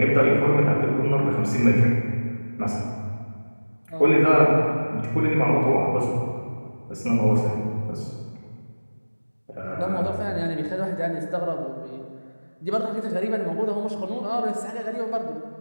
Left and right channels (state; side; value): inverted; both; correlation -1.00